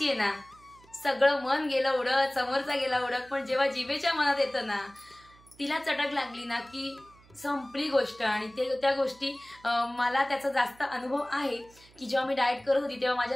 आहे ना, सगळं मन गेलं उडत, समोरचा गेला उडत, पण जेव्हा जिभेच्या मनात येतं ना, तिला चटक लागली ना की संपली गोष्ट. आणि त्या गोष्टी मला त्याचा जास्त अनुभव आहे की जेव्हा मी डाएट करत होती तेव्हा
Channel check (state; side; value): noise; right; hum, 27 dB below the sound